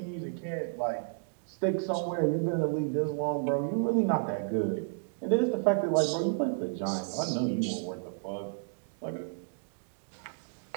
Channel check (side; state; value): left; silent; digital silence